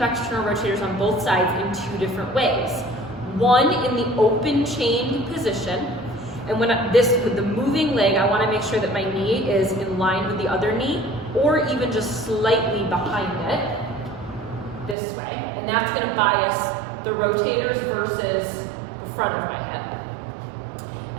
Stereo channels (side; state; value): left; drops out; at 15.0 s